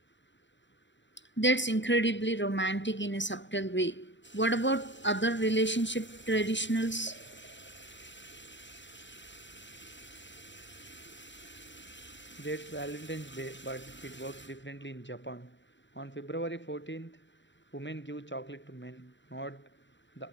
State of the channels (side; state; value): right; late; 0.53 ms